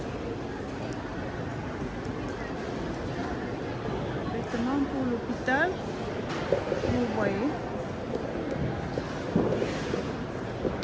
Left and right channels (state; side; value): identical; both; correlation 1.00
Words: Vêtements pour l'hôpital. Vous voyez.